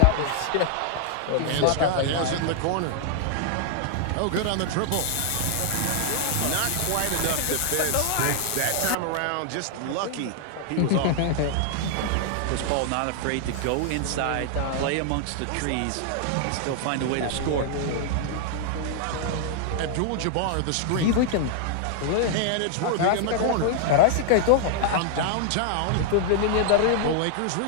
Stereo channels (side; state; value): both; different; correlation 0.00